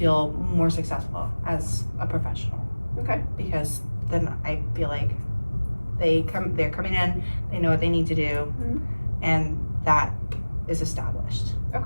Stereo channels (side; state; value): both; inverted; correlation -1.00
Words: more successful as a professional. Okay. Because then I feel like they're coming in, they know what they need to do, and that is established.